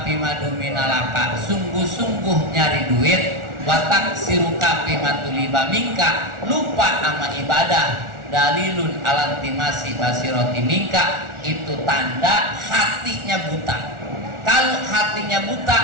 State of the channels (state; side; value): late; left; 1.4 ms